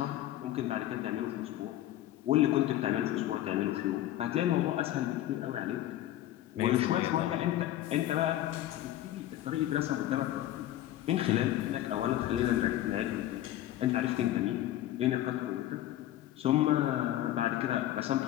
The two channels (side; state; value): right; quieter; 13.6 dB